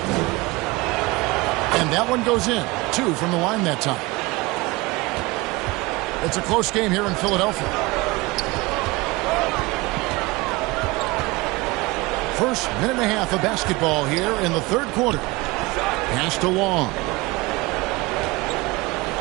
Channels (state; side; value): quieter; left; 22.8 dB